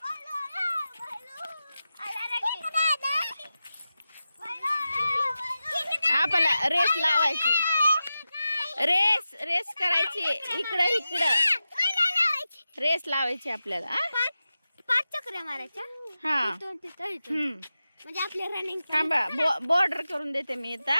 आपल्याला रेस लावायची रेस करायची इकडं रेस लावायची आपल्याला 5 चक्रा मारायच्या हा म्हणजे आपले रनिंग थांबा बॉर्डर करून देते मी आता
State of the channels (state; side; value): inverted; both; correlation -0.92